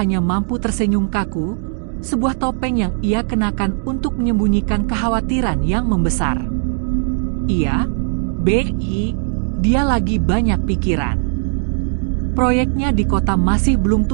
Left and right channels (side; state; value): left; silent; 63 dB below the other